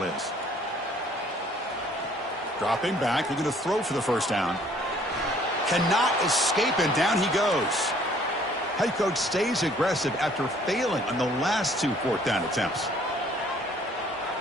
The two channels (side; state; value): both; normal; correlation 0.59